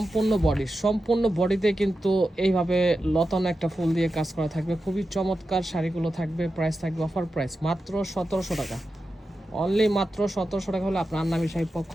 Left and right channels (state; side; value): normal; both; correlation 0.91